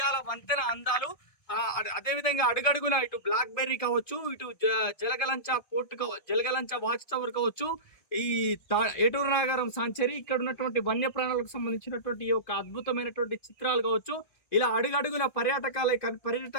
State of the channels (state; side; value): late; right; 1.6 ms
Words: వంతెన అందాలు, అదేవిధంగా అడుగడుగున ఇటు బ్లాక్ బెర్రీ కావచ్చు, ఇటు జలగలంచ వాచ్ టవర్ కావచ్చు, ఈ ఏటూరు నాగారం సాంచరీ, ఇక్కడ ఉన్నటువంటి వన్యప్రాణులకు సంబంధించినటువంటి ఈ యొక్క అద్భుతమైనటువంటి చిత్రాలు కావచ్చు, ఇలా అడుగడుగున